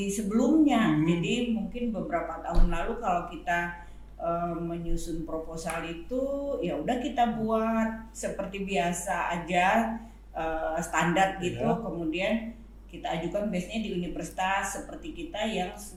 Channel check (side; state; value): both; identical; correlation 1.00